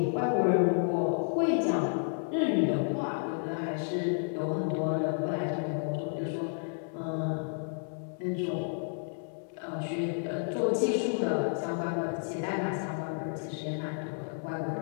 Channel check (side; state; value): right; silent; digital silence